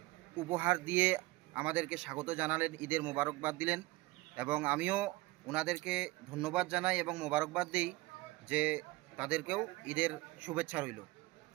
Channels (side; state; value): left; quieter; 20.5 dB